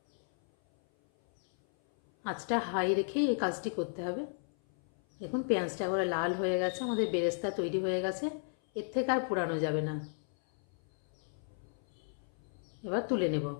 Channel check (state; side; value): silent; right; 55 dB below the other